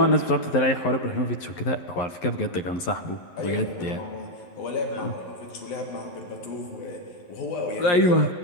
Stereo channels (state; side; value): late; right; 11 ms